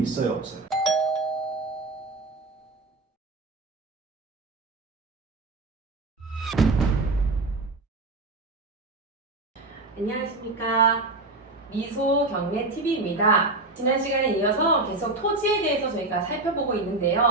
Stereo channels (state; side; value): quieter; left; 3.1 dB